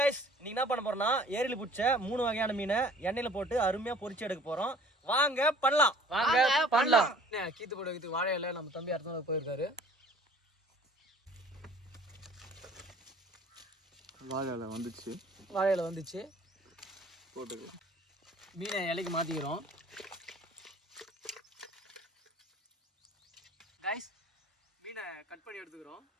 இன்னைக்கு என்ன பண்ண போறோம்னா ஏரியில் பிடிச்ச 3 வகையான மீனை எண்ணெயில் போட்டு அருமையாக பொரிச்சு எடுக்க போகிறோம். வாங்க பண்ணலாம். கீத்து போட வைக்கிறதுக்கு வாழை இலை நம்ம தம்பி அடுத்த போயிருக்காரு. வாழை இலை வந்துச்சு போட்டுக்கு மீனை இலைக்கு மாற்றிக்கிறோம். கைஸ், மீனை கட் பண்ணி எடுத்துக்கிறோம்.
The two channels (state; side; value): normal; both; correlation 0.51